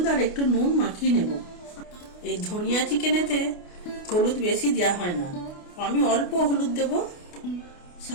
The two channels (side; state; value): right; late; 28 ms